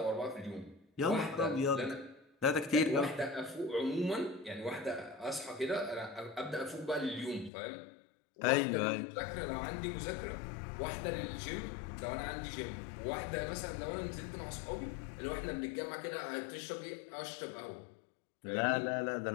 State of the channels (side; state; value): right; drops out; at 7.5 s